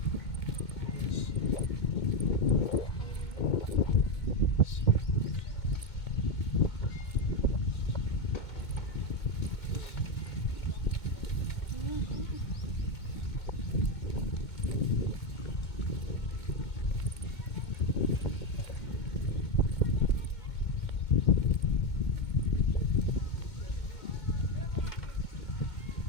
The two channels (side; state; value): right; late; 2.2 ms